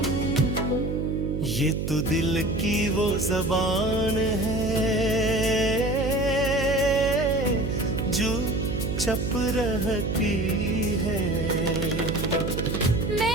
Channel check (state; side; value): noise; right; hum, 2 dB below the sound